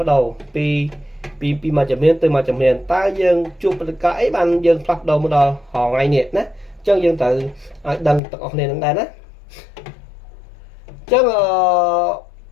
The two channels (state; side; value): drops out; right; at 8.2 s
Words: ប្ដូរពីមួយជំនាញទៅមួយជំនាញតើយើងជួបព្រឹត្តិការណ៍អីបានយើងផ្លាស់ប្ដូរមកដល់ថ្ងៃនេះណាអញ្ចឹងយើងត្រូវឲ្យដឹងទាំងអស់គ្នានឹងដែរណាអញ្ចឹង